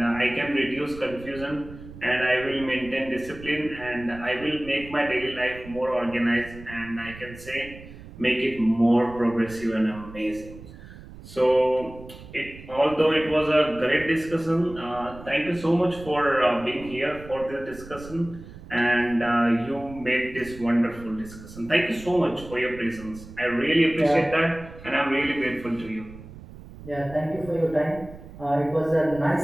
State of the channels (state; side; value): noise; right; rumble, 16 dB below the sound